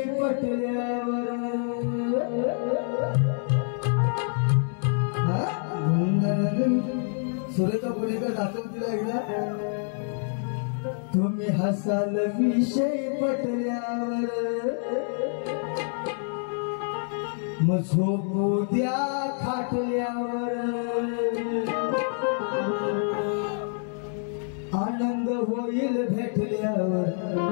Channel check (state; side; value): silent; right; 60 dB below the other